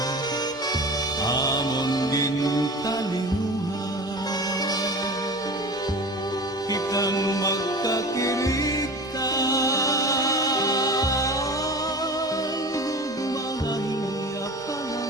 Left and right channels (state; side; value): normal; both; correlation 0.35